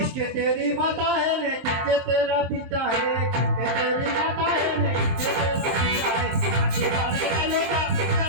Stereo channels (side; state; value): left; late; 23 ms